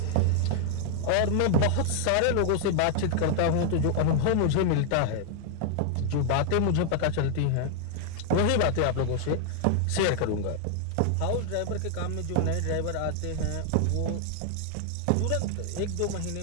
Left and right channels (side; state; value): both; different; correlation 0.00